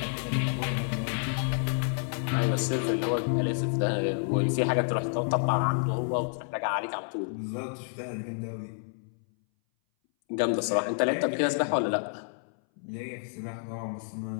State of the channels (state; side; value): silent; right; 58 dB below the other